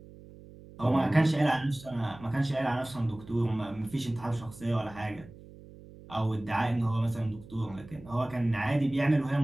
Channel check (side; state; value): right; noise; hum, 19 dB below the sound